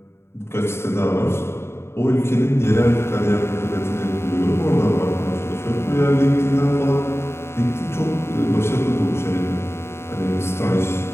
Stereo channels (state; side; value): late; right; 0.12 ms